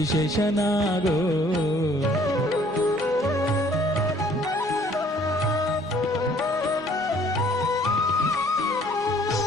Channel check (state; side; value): normal; both; correlation 0.59